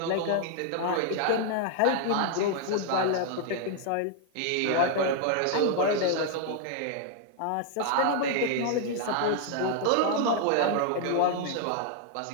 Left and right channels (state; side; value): different; both; correlation 0.00